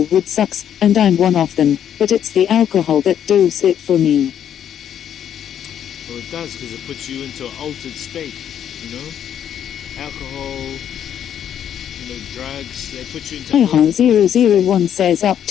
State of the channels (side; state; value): right; quieter; 9.5 dB